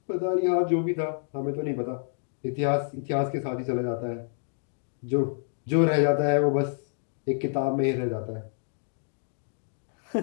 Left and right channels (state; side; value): silent; right; 59 dB below the other